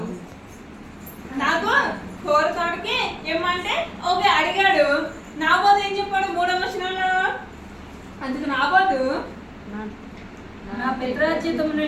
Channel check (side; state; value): both; identical; correlation 1.00